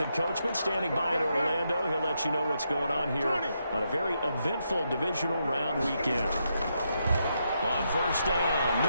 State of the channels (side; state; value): both; inverted; correlation -0.81